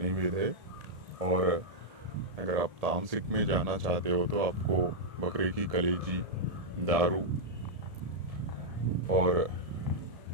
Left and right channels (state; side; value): late; left; 1.7 ms